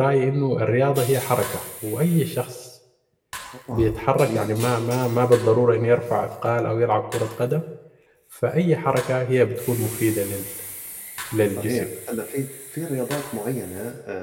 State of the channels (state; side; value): identical; both; correlation 1.00